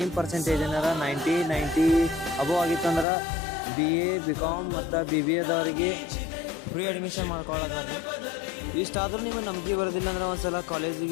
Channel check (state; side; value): drops out; right; at 3.1 s